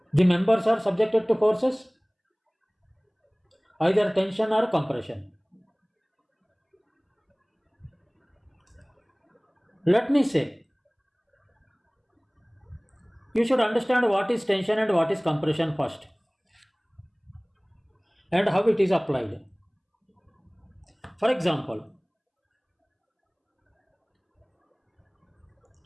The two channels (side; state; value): both; identical; correlation 1.00